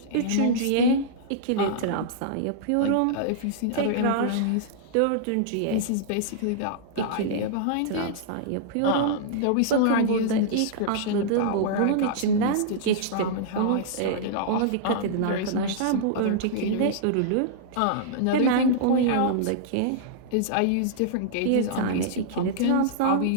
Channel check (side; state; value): both; different; correlation -0.02